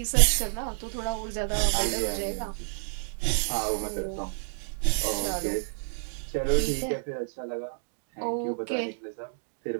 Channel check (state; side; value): silent; left; digital silence